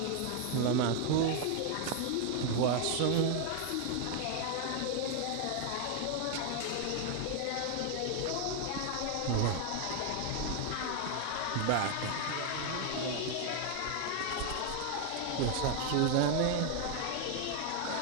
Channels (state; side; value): different; both; correlation 0.00